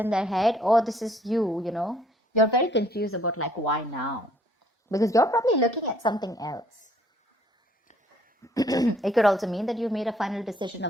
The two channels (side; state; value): both; normal; correlation 0.63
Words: their head, or this is you, you're very confused about like why now, because you're probably looking at something else. It could also mean that you made a final decision